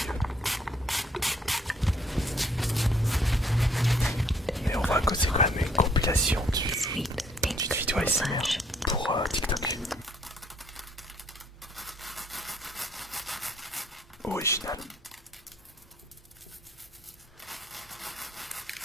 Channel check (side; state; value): both; normal; correlation 0.63